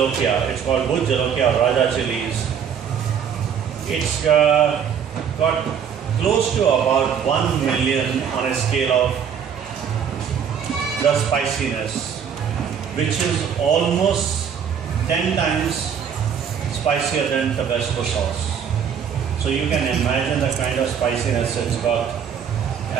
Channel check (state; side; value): quieter; left; 7.7 dB